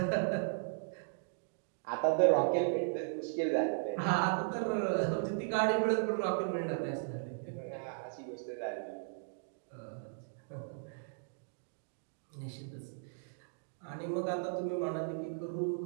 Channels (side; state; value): left; silent; digital silence